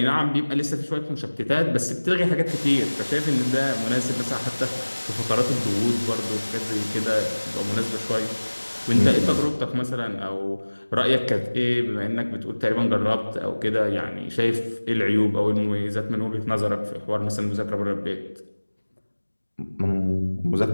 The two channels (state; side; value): inverted; both; correlation -1.00